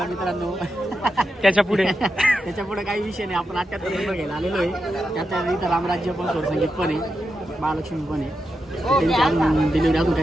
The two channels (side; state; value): both; normal; correlation 0.88